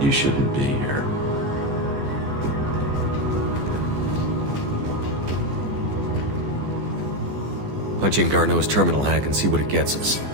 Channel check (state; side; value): late; left; 14 ms